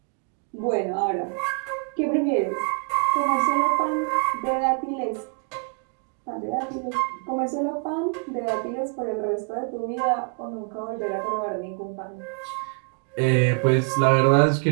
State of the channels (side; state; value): left; quieter; 38.0 dB